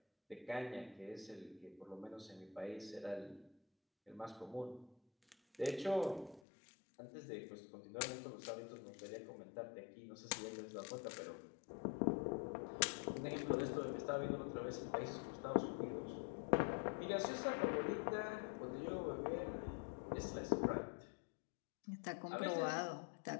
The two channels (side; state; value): right; drops out; at 6.4 s